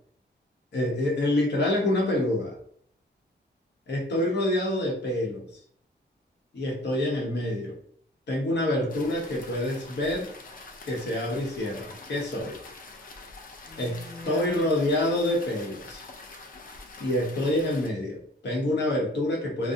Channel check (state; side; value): normal; both; correlation 0.49